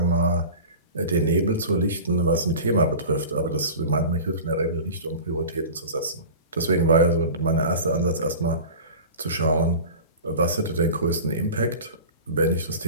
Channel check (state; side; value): inverted; both; correlation -0.36